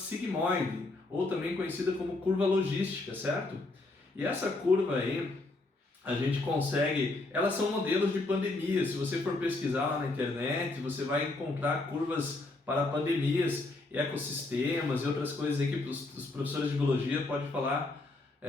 ou também conhecida como curva logística, certo? E essa curva aí, a gente consegue, elas são modelos de pandemia. Se você for pesquisar lá na internet, você vai encontrar curvas para pandemias, ecossistemas e outras coisas aí que os professores de biologia podem falar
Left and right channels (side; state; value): right; quieter; 3.1 dB